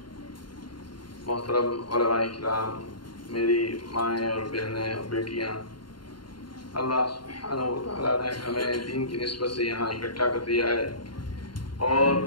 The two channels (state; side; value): late; right; 0.72 ms